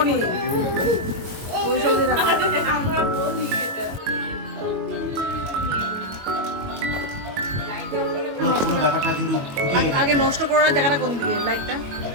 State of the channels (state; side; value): late; left; 21 ms